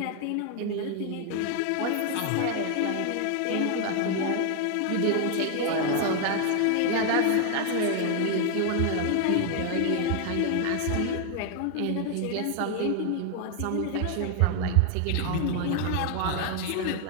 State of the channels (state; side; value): different; both; correlation 0.00